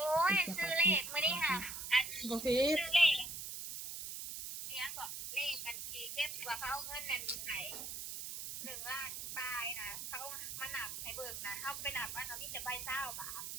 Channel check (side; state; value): right; noise; hiss, 7 dB below the sound